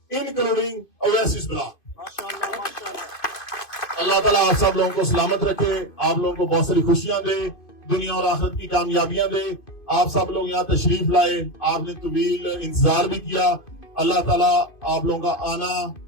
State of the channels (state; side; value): late; right; 2.5 ms